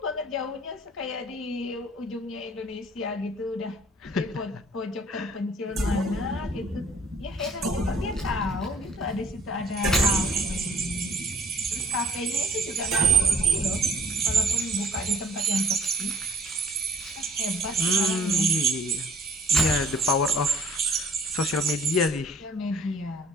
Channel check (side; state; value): both; normal; correlation 0.55